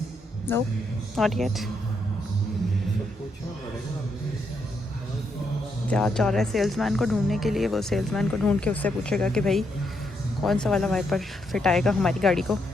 no, not yet. जा रहा है सेल्समैन को ढूंढने के लिए। वो सेल्समैन को ढूंढ के उससे पूछेगा कि भाई कौन सा वाला वाइपर फिट आएगा हमारी गाड़ी को।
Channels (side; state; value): both; normal; correlation 0.78